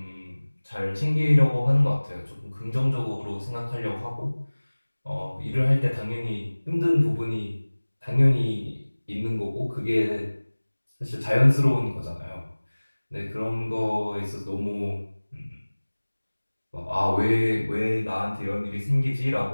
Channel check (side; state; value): both; inverted; correlation -1.00